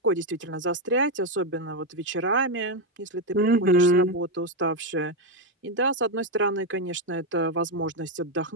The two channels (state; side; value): normal; both; correlation 0.05